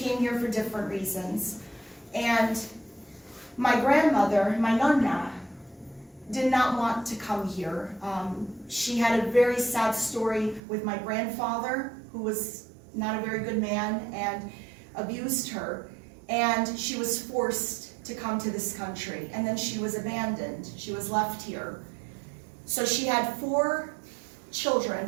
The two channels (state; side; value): drops out; left; at 10.6 s